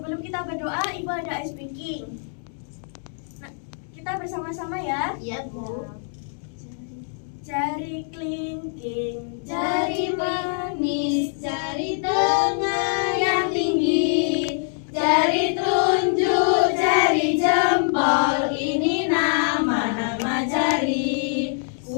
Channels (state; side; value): silent; right; 63 dB below the other